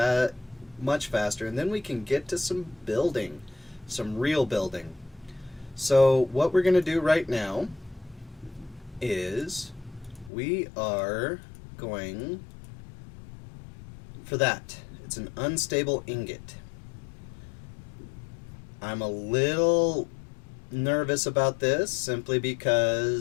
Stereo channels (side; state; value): right; drops out; at 10.3 s